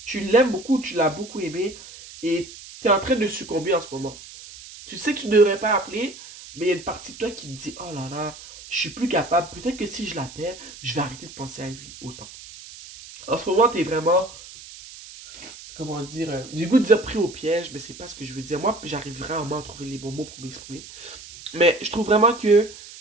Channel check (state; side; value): noise; right; hiss, 16 dB below the sound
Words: Tu l'aimes beaucoup, tu l'as beaucoup aimé et tu es en train de succomber en ce moment. Tu sais que tu ne devrais pas appeler, mais il y a une partie de toi qui te dit, oh là là, je suis plus capable. Peut-être que si je l'appelle, je vais arrêter de penser à lui autant. En ce moment, tu es vraiment, comment dire, j'ai le goût de dire pris au piège, mais c'est pas ce que je veux dire. Moi, j'arrive vraiment à trouver les bons mots pour m'exprimer. Mais je trouve vraiment que